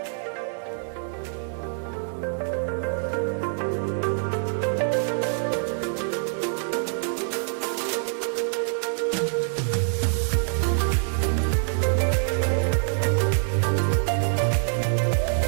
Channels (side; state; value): left; silent; 61 dB below the other